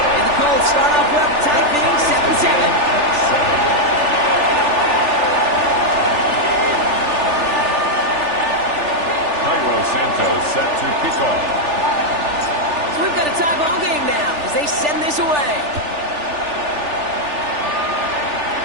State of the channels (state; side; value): late; left; 3.4 ms